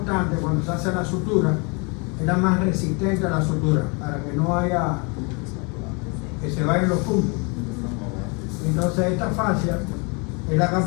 cuando se hace la sutura, es la más resistente a la sutura, para que no haya, que se vayan los puntos. Entonces esta fascia es la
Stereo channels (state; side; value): quieter; right; 31.9 dB